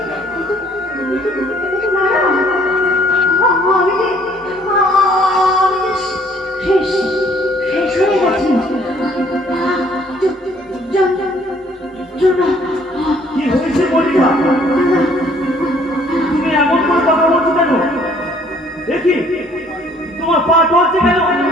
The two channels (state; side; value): normal; both; correlation 0.60